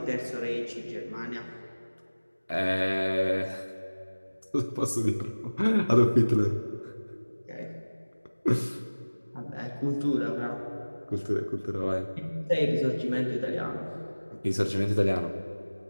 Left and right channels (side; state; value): both; inverted; correlation -1.00